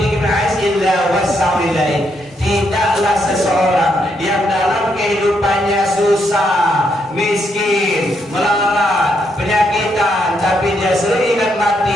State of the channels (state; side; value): normal; both; correlation 0.77